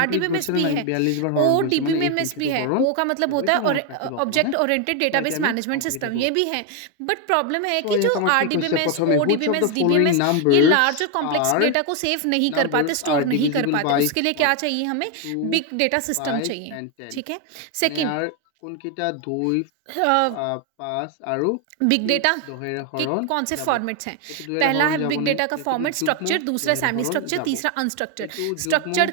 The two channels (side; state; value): both; different; correlation 0.01